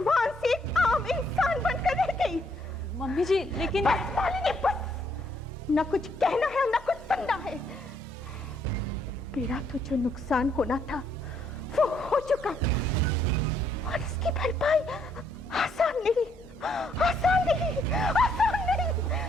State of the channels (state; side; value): normal; both; correlation 0.70